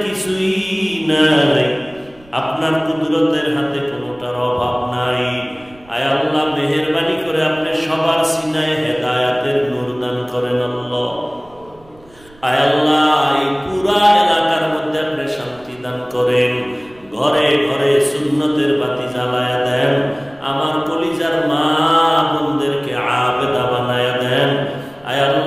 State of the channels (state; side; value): noise; right; rumble, 27 dB below the sound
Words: কিছুই নাই, আপনার কুদরতের হাতে কোনোটার অভাব নাই। আয় আল্লাহ, মেহেরবানি করে আপনি সবার সিনায় হেদায়াতের নূর দান করেন আল্লাহ। আয় আল্লাহ, এই পুরা এলাকার মধ্যে আপনি শান্তি দান করেন, ঘরে ঘরে সুন্নতের বাতি জ্বালায়া দেন, আমার কলিজার মা বোনদেরকে আবেদা বানায়া দেন। আয়